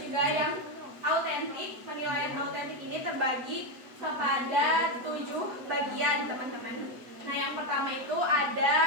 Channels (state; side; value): late; left; 7.9 ms